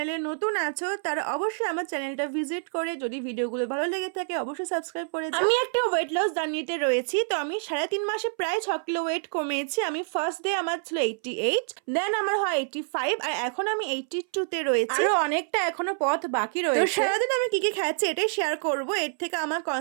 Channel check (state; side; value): silent; left; 60 dB below the other